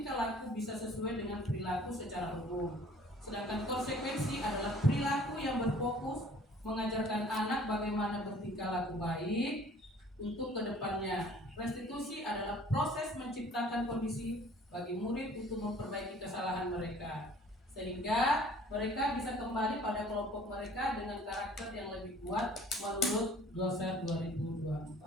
laku bisa sesuai dengan perilaku secara umum. Sedangkan konsekuensi adalah perilaku yang berfokus mengajarkan anak bagaimana bertingkah laku baik untuk kedepannya. Restitusi adalah proses menciptakan kondisi bagi murid untuk memperbaiki kesalahan mereka, sehingga mereka bisa kembali pada kelompok mereka dengan karakter yang lebih kuat menurut Gloser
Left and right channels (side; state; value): both; normal; correlation 0.53